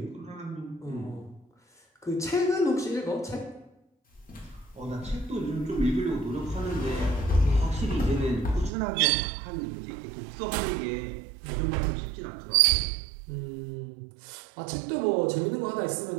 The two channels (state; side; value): drops out; left; at 8.7 s